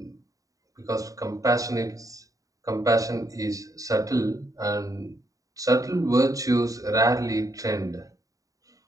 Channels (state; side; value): late; left; 0.16 ms